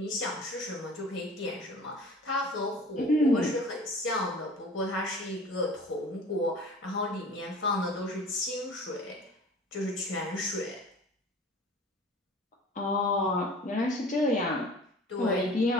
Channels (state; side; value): normal; both; correlation 0.43